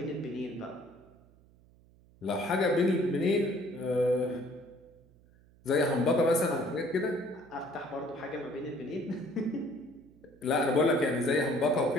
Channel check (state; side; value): noise; right; hum, 28 dB below the sound